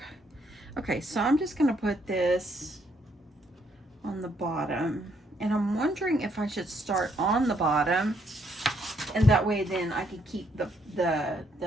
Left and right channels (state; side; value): normal; both; correlation 0.72